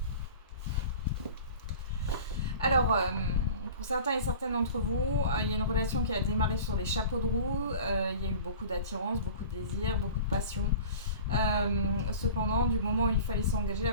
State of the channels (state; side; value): inverted; both; correlation -0.40